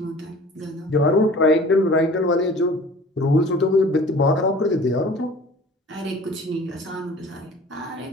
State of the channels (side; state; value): both; normal; correlation 0.45